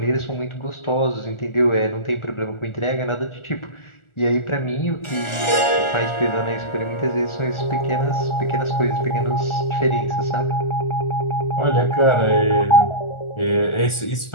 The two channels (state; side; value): late; right; 1.4 ms